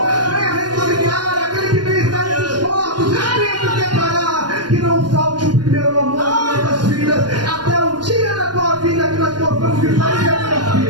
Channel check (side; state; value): left; late; 0.70 ms